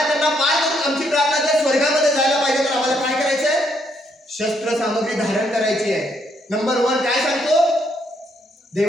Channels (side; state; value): both; normal; correlation 0.73